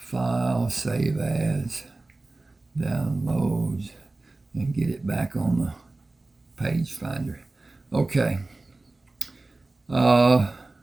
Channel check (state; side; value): quieter; left; 3.1 dB